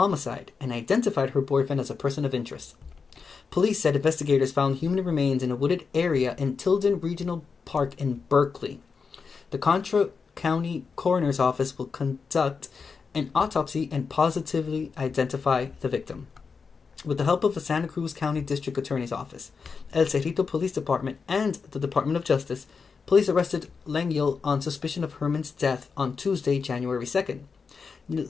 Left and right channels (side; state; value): right; quieter; 5.3 dB